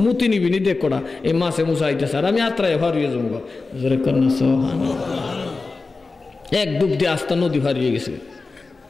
মুতি নিবি নি দেখ কটা এই মাছে মুসা আইতেছে আর আমি আত্রায় হারিয়ে যাবো জোরে কর না সুবহানাল্লাহ এক ডুব দিয়ে আস্তা নদী হারিয়ে গেছে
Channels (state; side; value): quieter; right; 3.9 dB